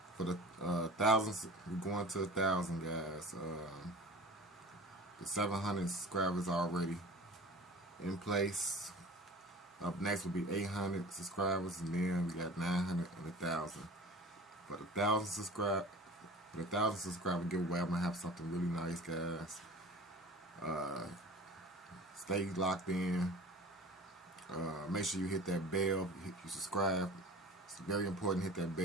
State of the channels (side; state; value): both; normal; correlation 0.40